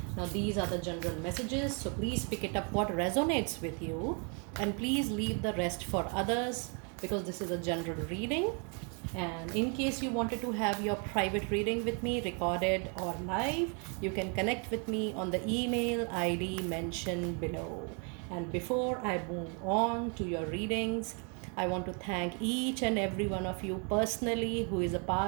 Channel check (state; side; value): quieter; left; 37.0 dB